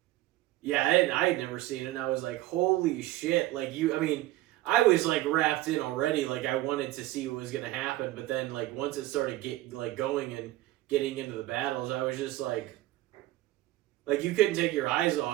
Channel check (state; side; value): quieter; left; 16.3 dB